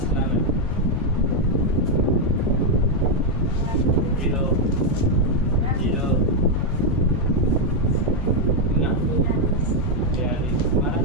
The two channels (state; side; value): noise; left; hum, 8 dB below the sound